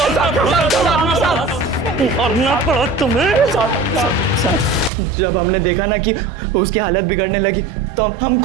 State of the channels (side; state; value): left; drops out; at 4.9 s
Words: मारना पड़ा तुम्हें? जब हमने देखा ना कि उसकी हालत बिगड़ने लगी तो हम